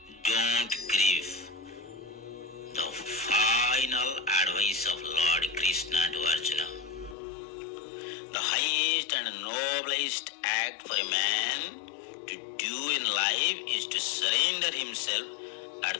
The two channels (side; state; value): right; drops out; at 7.2 s